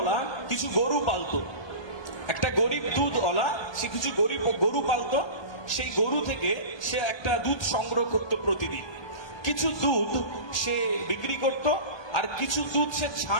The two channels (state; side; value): late; right; 1.2 ms